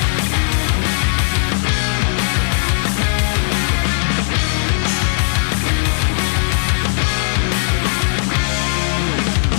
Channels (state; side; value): silent; right; digital silence